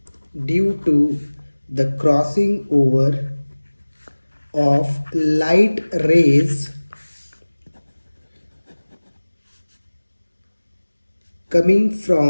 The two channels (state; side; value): inverted; both; correlation -1.00